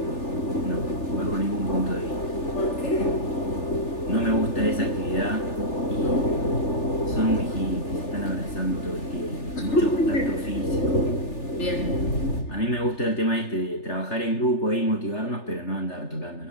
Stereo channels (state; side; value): late; right; 3.4 ms